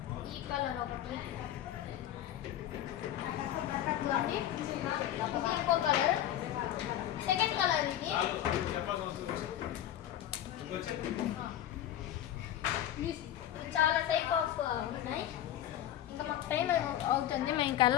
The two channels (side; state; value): right; quieter; 11.9 dB